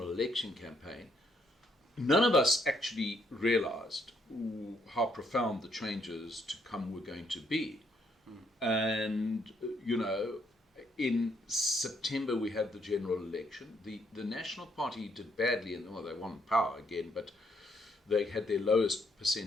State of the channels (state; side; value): normal; both; correlation 0.72